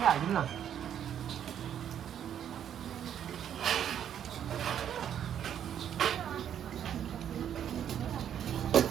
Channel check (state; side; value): quieter; left; 9.5 dB